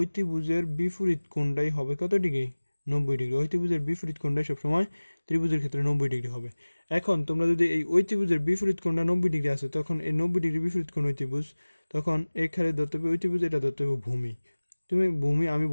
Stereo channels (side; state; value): both; inverted; correlation -1.00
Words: বিপরীত কোণটাই হবে কত ডিগ্রি, 90 ডিগ্রি। অতিভুজের বিপরীত কোণটাই সবসময় ত্রিভুজের ক্ষেত্রে 90 ডিগ্রি হবে। এখন তোমরা যদি এই অতিভুজের বিপরীত কোণটা 90 ডিগ্রি আছে, তখন এই 90 ডিগ্রি বিপরীত কোণ অতিভুজ, তখন এখানে ধরতে হবে অতিভুজ, এটা ধরতে হবে ভূমি। তুমি ভূমি, আমি